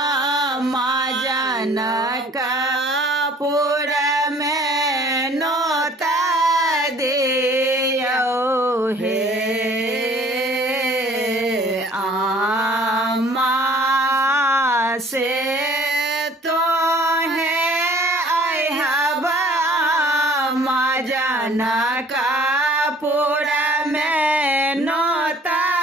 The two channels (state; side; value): normal; both; correlation 0.53